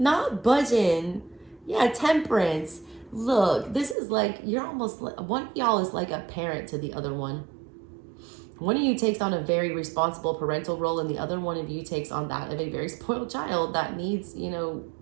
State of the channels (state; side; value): drops out; left; at 4.0 s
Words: budging. Yeah, temperance. Look, this is like, you're almost like, one of y'all is like a parent to the other one. One of you takes on a very responsible parental role, and the other one of you takes on that of a very spoiled child that needs, you know,